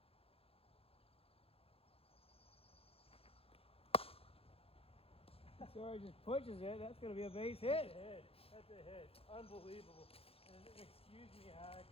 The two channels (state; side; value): late; right; 0.28 ms